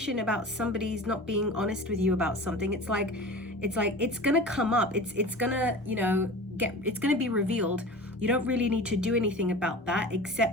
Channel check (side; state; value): both; normal; correlation 0.36